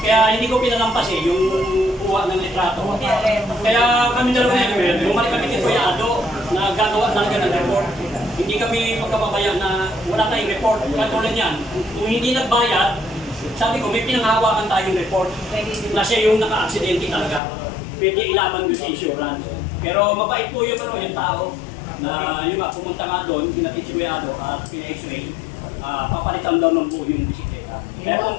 Kaya hindi ko pinalampas eh, yung kuha ng litrato. Kaya kami dalawa na bumalik kami kay Kuya Ado na gagawa talaga ng report. Hindi kami magkapabayaan na wala tayong report. Katulad yan, kung hindi nagbayad, sabi ko may pinanghawakan tayong report na siya yung naka-aksidente talaga. Pwede ilaban doon sa insurance. Pero mabait po yung tao na yung pumunta nga doon, pinatid si Kuya Ado at pina-x-ray. Papalitan daw ng buo yung bisikleta. Kaya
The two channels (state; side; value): drops out; right; at 17.4 s